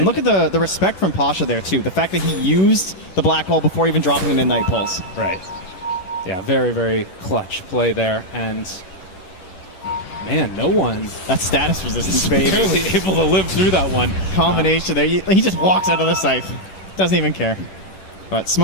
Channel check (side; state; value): right; late; 10 ms